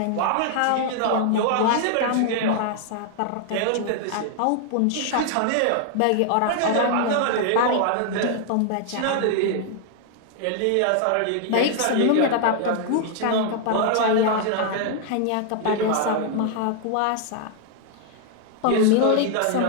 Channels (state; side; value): different; both; correlation 0.00